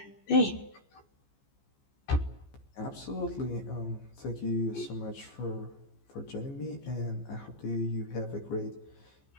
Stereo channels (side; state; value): right; late; 15 ms